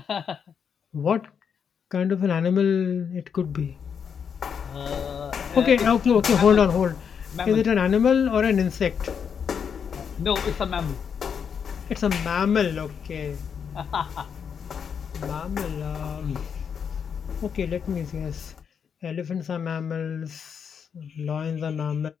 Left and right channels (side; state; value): right; quieter; 7.1 dB